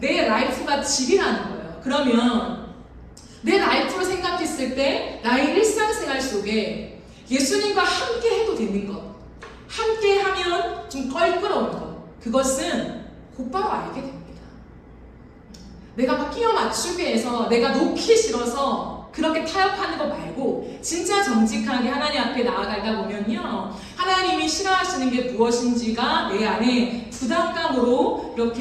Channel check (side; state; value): both; identical; correlation 1.00